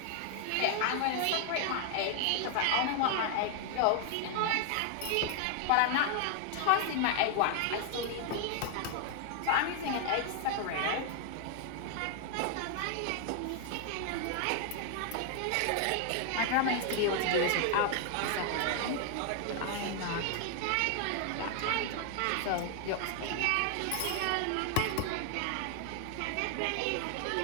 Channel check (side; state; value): both; different; correlation 0.00